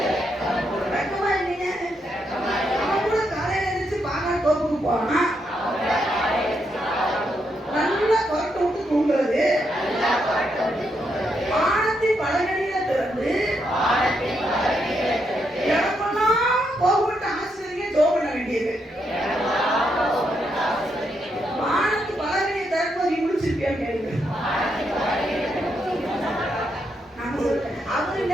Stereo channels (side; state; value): both; normal; correlation 0.79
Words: வெக்கமா இல்லைங்க? அவன் கூட காலையில எழுந்திரிச்சு பாகால் தோப்புக்கு போனா நல்லா கொரட்டை விட்டு தூங்குறது, வானத்தின் பலகணியில திறந்து இடமெல்லாம் போகப்பட்டு ஆசிரியர் ஜோம் பண்ண வேண்டியது. வானத்து பலகணியை திறப்பது நீ முடிச்சிருப்பியான்னு கேளுங்க. அவரு